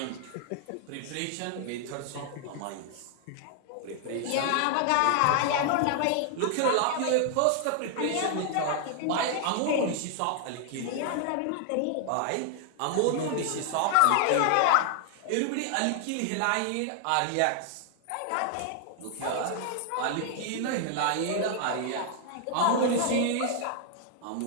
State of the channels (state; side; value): different; both; correlation 0.00